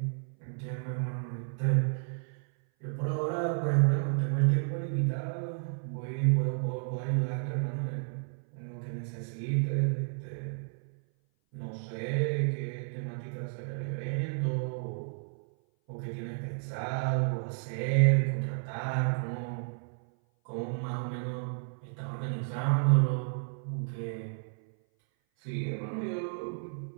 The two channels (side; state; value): left; silent; 56 dB below the other